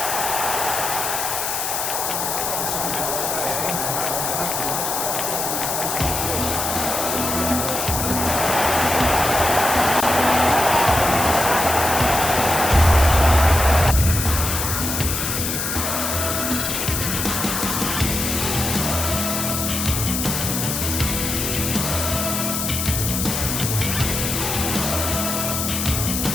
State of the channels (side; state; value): left; noise; hiss, 2 dB below the sound